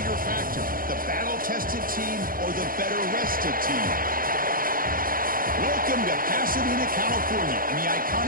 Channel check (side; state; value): left; late; 0.41 ms